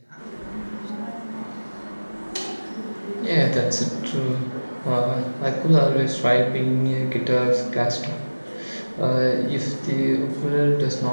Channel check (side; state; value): both; inverted; correlation -1.00